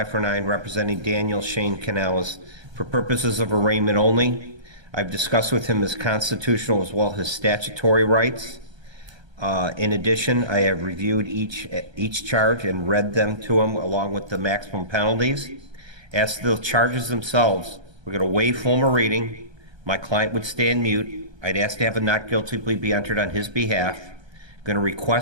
representing Daniel Shane Canales. For purposes of arraignment only, I've discussed with him his constitutional as well as his statutory rights. In addition, I have reviewed each charge and read them to him along with the maximum penalties. As to the charges themselves, we're going to waive formal reading. My client would stand mute. I'd ask to have a not guilty plea be entered on his behalf. I'm going to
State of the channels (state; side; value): late; left; 1.3 ms